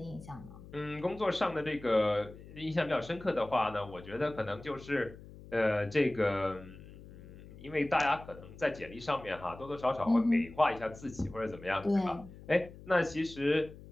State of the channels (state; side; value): noise; left; hum, 17 dB below the sound